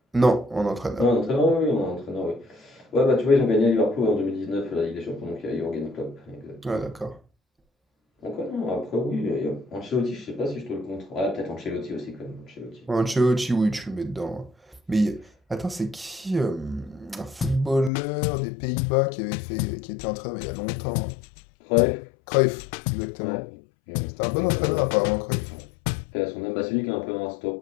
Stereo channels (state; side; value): drops out; right; at 17.9 s